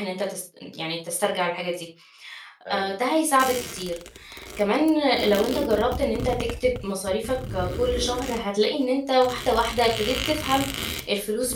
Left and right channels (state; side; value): identical; both; correlation 1.00